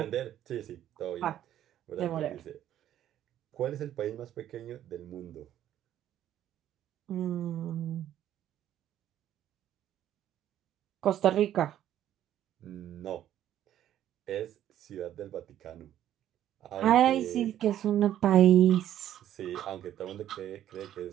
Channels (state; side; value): quieter; left; 11.6 dB